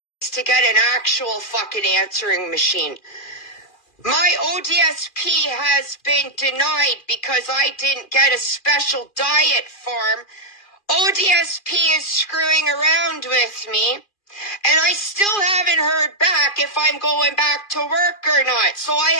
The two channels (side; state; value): right; late; 2.4 ms